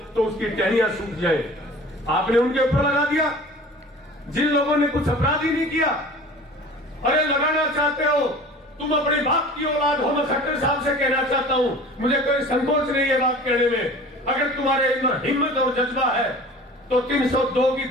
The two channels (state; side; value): normal; both; correlation 0.42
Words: तो उसकी टहनियां सूख जाए। आपने उनके ऊपर लगा दिया जिन लोगों ने कुछ अपराध ही नहीं किया। अरे लगाना चाहते हो, तुम अपने बाप की औलाद हो। मैं खट्टर साहब से कहना चाहता हूं, मुझे कोई संकोच नहीं है बात कहने में। अगर तुम्हारे अंदर हिम्मत और जज्बा है तो 302 की